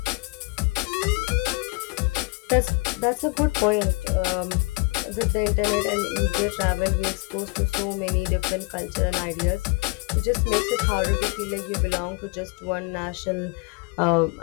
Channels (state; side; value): quieter; right; 27.0 dB